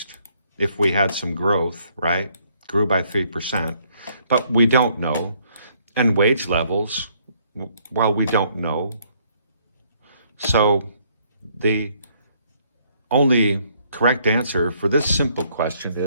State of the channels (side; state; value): both; inverted; correlation -0.67